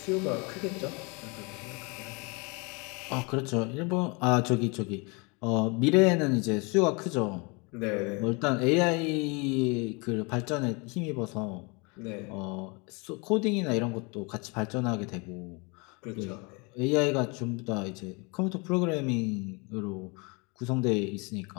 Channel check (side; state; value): right; quieter; 30.1 dB